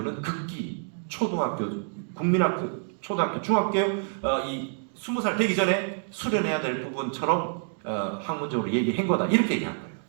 극기, 초등학교, 국민학교, 초등학교, 중학교 이 20살 되기 전에 수련해야 될 부분처럼 학문적으로 얘기한 거다. 이렇게 얘기한 거예요.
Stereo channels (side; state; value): left; silent; 58 dB below the other